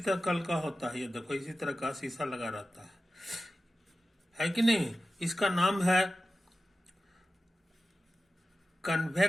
कल का होता है। ये देखो, इसी तरह का शीशा लगा रहता है कि नहीं। इसका नाम है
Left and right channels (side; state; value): both; normal; correlation 0.94